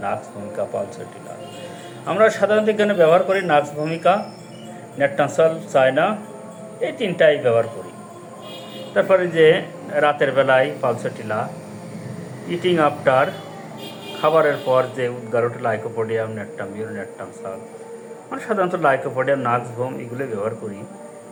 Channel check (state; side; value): identical; both; correlation 1.00